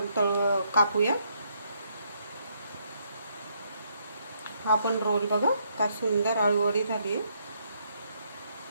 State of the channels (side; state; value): both; inverted; correlation -0.73